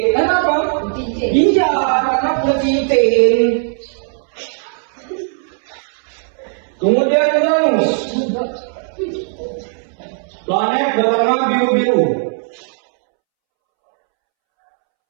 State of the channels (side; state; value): left; silent; 68 dB below the other